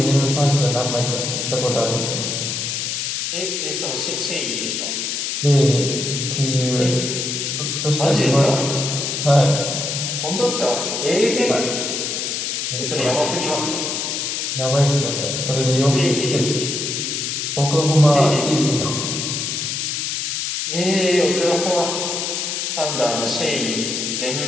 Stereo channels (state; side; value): noise; left; hiss, 2 dB below the sound